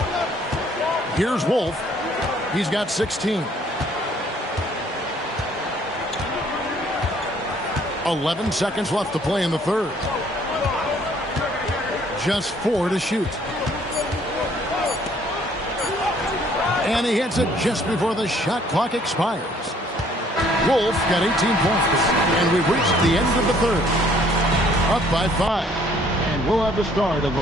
Here's Wolf. He's got 16. 11 seconds left to play in the third. Just 4 to shoot. And he hits it just before the shot clock expires. Wolf got 18 points. And we've reached the end of the third. Up by 5. And we'll have the start of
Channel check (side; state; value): both; normal; correlation 0.61